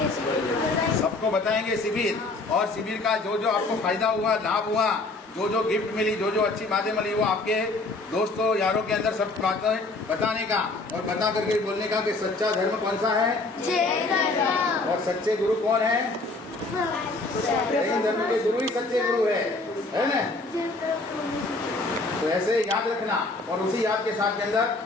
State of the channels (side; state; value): right; quieter; 3.3 dB